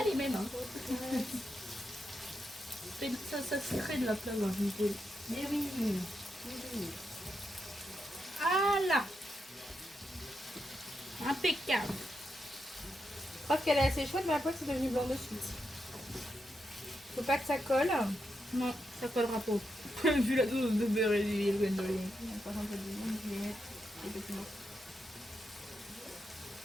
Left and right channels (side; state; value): both; normal; correlation 0.84